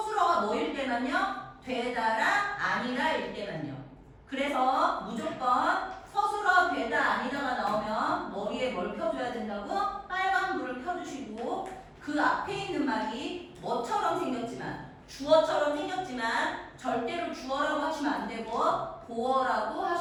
뭐일 때만요? 되다라 아니라일 때만요. 그래서 무조건 서술어 되다 아니다가 나오면 머리에 뭘 펴줘야 된다고? 빨간 불을 펴주시고 그 앞에 있는 말이 뭐처럼 생겼지만 주어처럼 생겼지만 절대로 주어라고 하시면 안 되고 보어라고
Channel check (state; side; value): identical; both; correlation 1.00